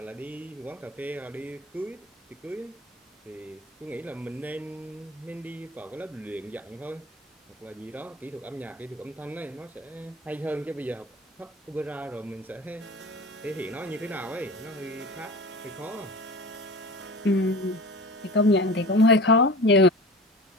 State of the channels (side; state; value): both; normal; correlation 0.36